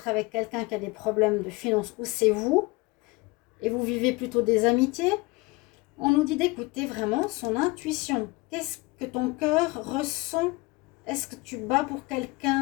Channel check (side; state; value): right; quieter; 24.0 dB